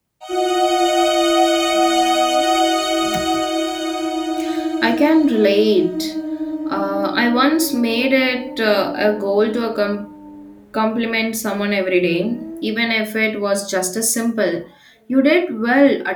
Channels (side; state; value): both; identical; correlation 1.00